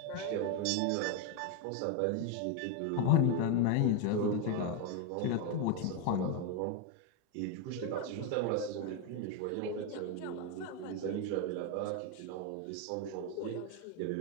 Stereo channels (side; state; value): both; different; correlation 0.01